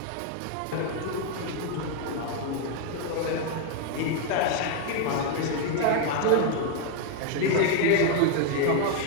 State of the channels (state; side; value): different; both; correlation 0.01